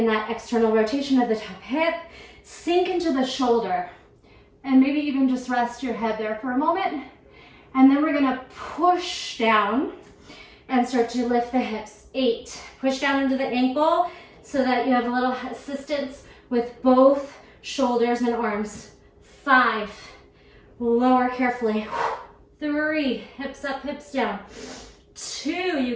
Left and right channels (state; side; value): identical; both; correlation 1.00